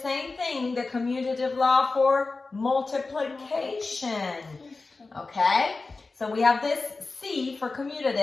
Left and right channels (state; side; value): quieter; right; 3.7 dB